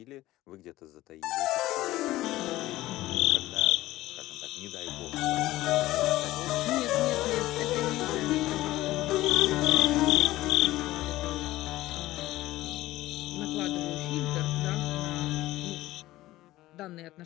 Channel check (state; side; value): quieter; right; 16.6 dB